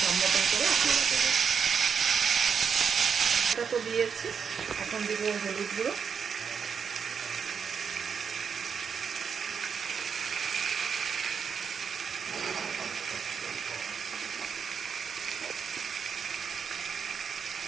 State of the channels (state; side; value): quieter; left; 6.6 dB